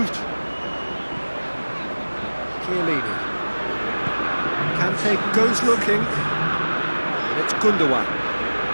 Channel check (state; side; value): inverted; both; correlation -1.00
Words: Chiellini. Kante goes looking. And it's Gundogan.